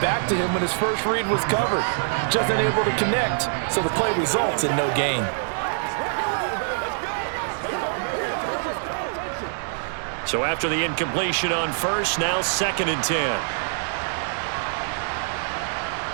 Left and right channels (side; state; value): left; silent; digital silence